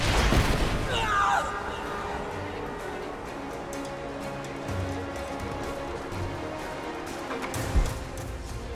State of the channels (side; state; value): both; identical; correlation 1.00